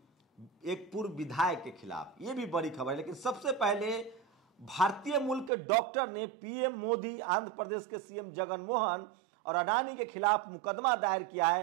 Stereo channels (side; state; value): left; drops out; at 5.5 s